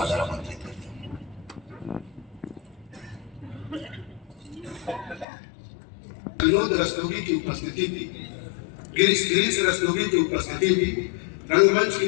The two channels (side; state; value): right; drops out; at 5.2 s